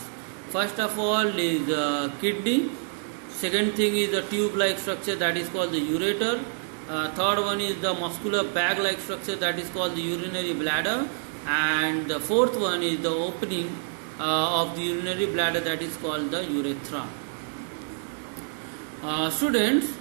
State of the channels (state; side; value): silent; left; digital silence